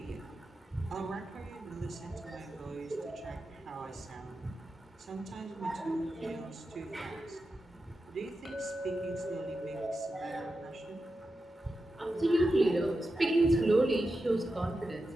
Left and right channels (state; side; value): normal; both; correlation 0.90